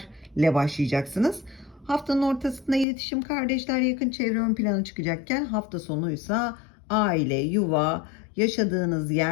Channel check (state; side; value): drops out; right; at 2.9 s